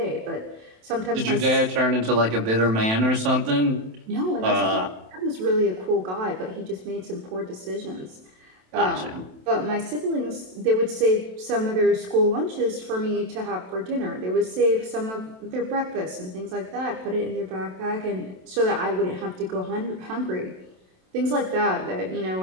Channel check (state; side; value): late; left; 27 ms